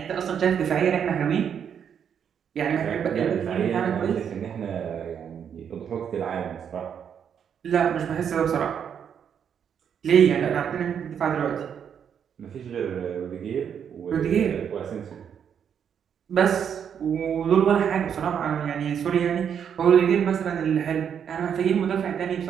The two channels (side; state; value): left; quieter; 8.0 dB